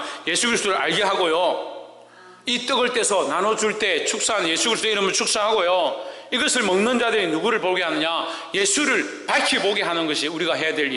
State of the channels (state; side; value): identical; both; correlation 1.00